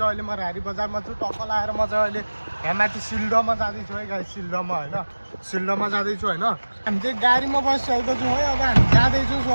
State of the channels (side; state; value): both; inverted; correlation -1.00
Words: अहिले म रारी बजारमा छु। टक्क लाएर म चाहिँ अहिले यहाँ माथि सिल्डोमा जाँदैछु है गाइज। सिल्डोमा होइन, सिल्डोमा जाँदैछु होइन। हामी चाहिँ गाडीमा बसिसकेको छु है। अब हामी जाँदैछु